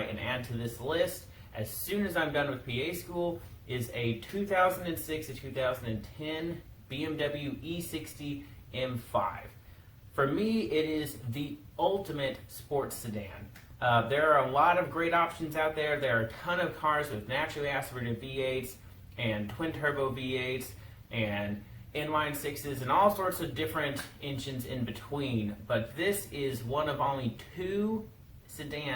and add to this list as soon as I'm done with PA school is a 2006 to 2010 BMW E60 M5. For me, it is the ultimate sports sedan. There are a lot of great options out there. There are a ton of cars with naturally aspirated V8s and twin turbo V8s and inline sixes and all sorts of different engines in between. But this is one of only 2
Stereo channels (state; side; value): identical; both; correlation 1.00